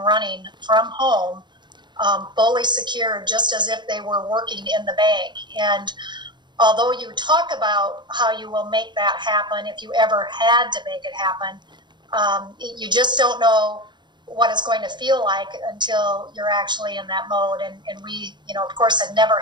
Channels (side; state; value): left; late; 0.22 ms